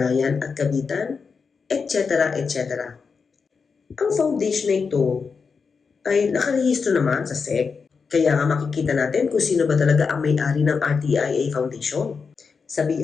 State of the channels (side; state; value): right; quieter; 5.3 dB